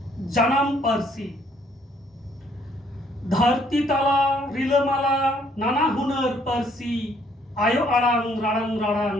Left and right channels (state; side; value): normal; both; correlation 0.66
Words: জানাম পারসি। ধরতি তালা রিলমালা নানা হুনর পারসি, আয়ো আড়াং রাড়াং রাড়াং